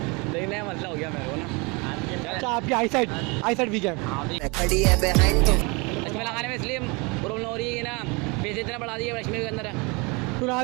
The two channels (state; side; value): quieter; left; 28.5 dB